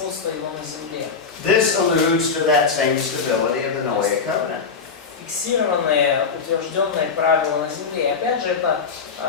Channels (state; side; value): quieter; right; 5.3 dB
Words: его на земле. This alludes to that same stability of the Noahic covenant. Фиксированные, утвержденные правила на земле. И опять же это